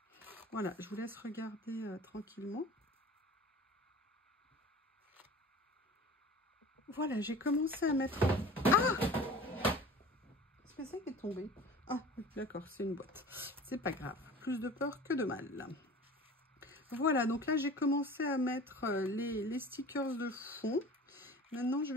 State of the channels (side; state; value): both; normal; correlation 0.40